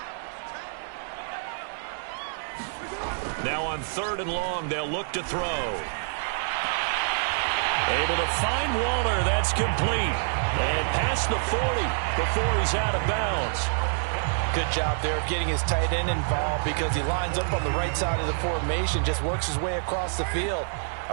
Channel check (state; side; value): silent; left; 60 dB below the other